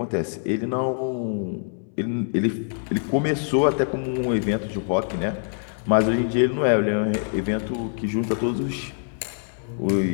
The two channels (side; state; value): right; silent; digital silence